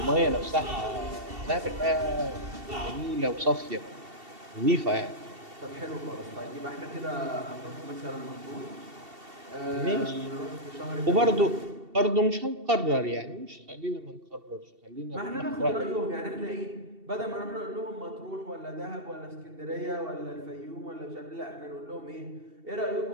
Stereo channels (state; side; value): late; left; 2.7 ms